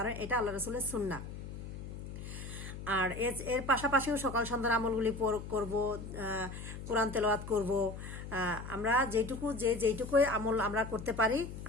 এটা আল্লাহ রাসূলের সুন্নাহ। আর এর পাশাপাশিও সকাল সন্ধ্যার আমলগুলি করব, কোরআন তেলাওয়াত করব। আমরা যেইটুকুই আমল আমরা করতে পারি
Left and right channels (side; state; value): left; noise; hum, 9 dB below the sound